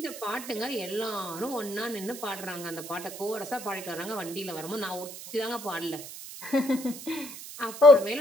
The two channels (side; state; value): right; noise; hiss, 12 dB below the sound